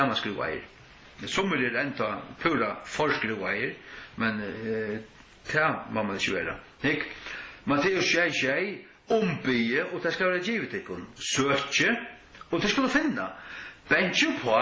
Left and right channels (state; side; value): identical; both; correlation 1.00